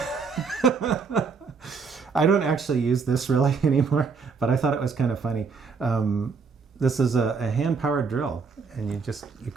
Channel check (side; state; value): left; quieter; 5.2 dB